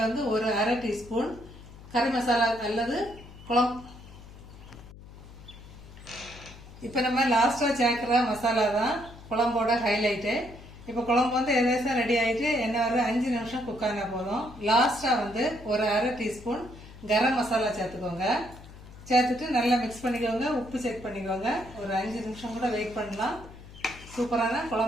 வந்து ஒரு 1/2 டீஸ்பூன் கறி மசாலா அல்லது குழம்பு. இப்போ நம்ம லாஸ்டா சேர்க்கிற மசாலா தான் குழம்போட ஹைலைட்டு. இப்போ குழம்பு வந்து எதேசம் ரெடி ஆகிட்டு என்ன ஒரு 5 நிமிஷம் குக் ஆனா போதும். லாஸ்டா வந்து ஒரு 1/2 டீஸ்பூன் கரம் மசாலா சேர்த்துக்கோங்க. சேர்த்துட்டு நல்லா மிக்ஸ் பண்ணிக்கோங்க. உப்பு செக் பண்ணிக்கோங்க. ஒரு 5 நிமிஷம் கூட வெயிட் பண்ணலாம். சூப்பரான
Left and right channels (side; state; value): left; noise; hum, 18 dB below the sound